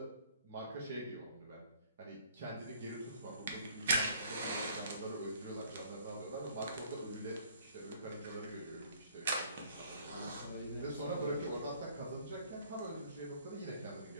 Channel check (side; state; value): both; inverted; correlation -0.56